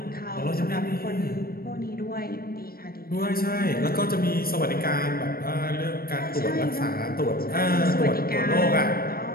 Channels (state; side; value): late; right; 0.44 ms